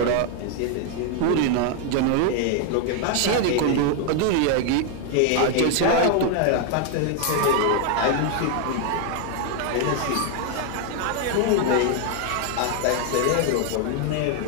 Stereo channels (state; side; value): different; both; correlation 0.00